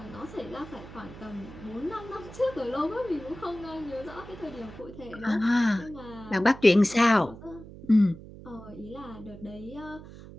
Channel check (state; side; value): noise; right; hum, 16 dB below the sound